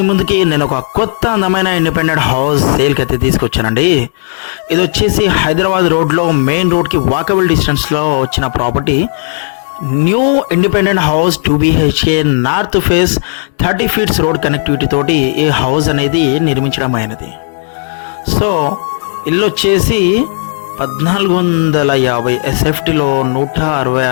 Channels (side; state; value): right; silent; digital silence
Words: ముందుకి నేను ఒక కొత్త అందమైన ఇండిపెండెంట్ హౌస్ సేల్కి అయితే తీసుకొచ్చానండి. ఇది వచ్చేసి హైదరాబాద్ రోడ్లో మెయిన్ రోడ్కి వాకబుల్ డిస్టెన్స్లో వచ్చిన property. New independent house 2 BHK north face 30 feets road connectivity తోటి ఈ హౌస్ అనేది నిర్మించడం అయినది. సో ఇల్లు వచ్చేసి 1450 SFTలో